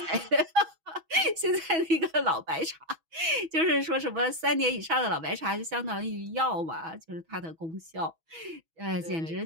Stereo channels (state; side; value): late; left; 6.2 ms